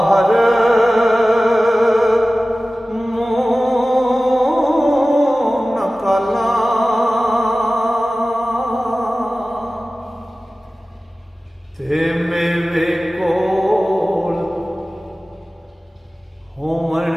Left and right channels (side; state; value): both; normal; correlation 0.96